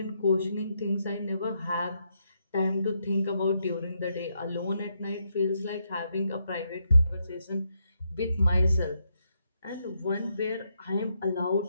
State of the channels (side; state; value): both; inverted; correlation -0.79